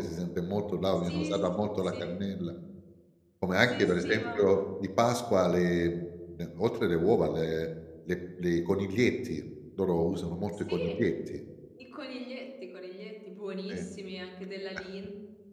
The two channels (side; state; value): both; identical; correlation 1.00